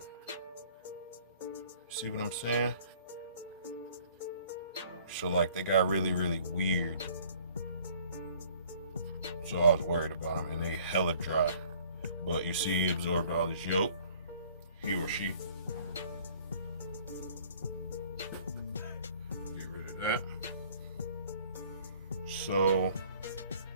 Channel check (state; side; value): inverted; both; correlation -0.54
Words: See what I'm saying? So like they got really, really weird. So I was worried about them, and they hella dry. But you see he absorbed all his yolk, he or she. Get rid of that. So